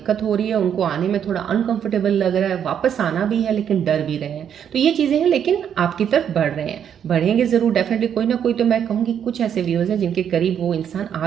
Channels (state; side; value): quieter; left; 8.7 dB